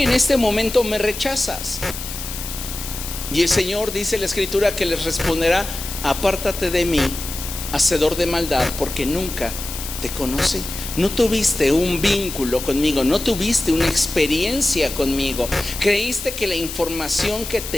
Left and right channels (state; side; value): noise; left; hiss, 8 dB below the sound